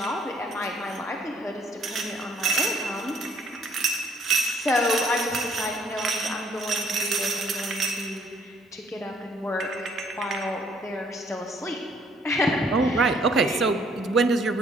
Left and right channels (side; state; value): both; normal; correlation 0.63